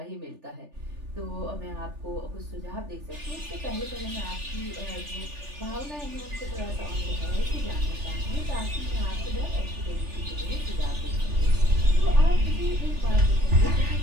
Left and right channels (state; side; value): late; left; 3.4 ms